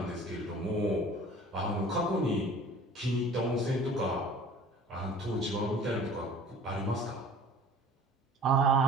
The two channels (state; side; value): normal; both; correlation 0.47